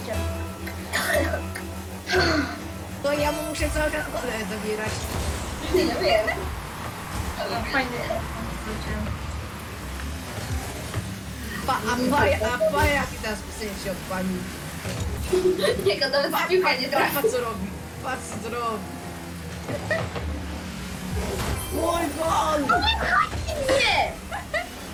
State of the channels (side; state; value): both; identical; correlation 1.00